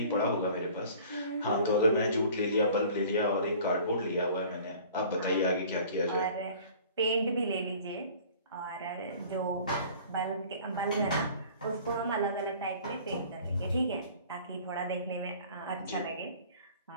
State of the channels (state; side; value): inverted; both; correlation -0.48